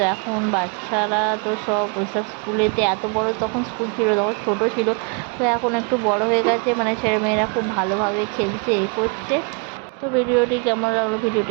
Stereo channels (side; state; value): left; quieter; 34.8 dB